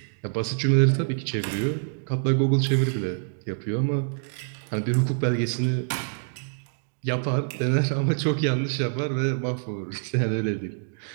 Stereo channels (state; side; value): silent; left; digital silence